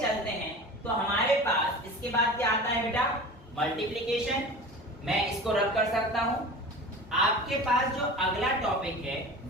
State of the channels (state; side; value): normal; both; correlation 0.35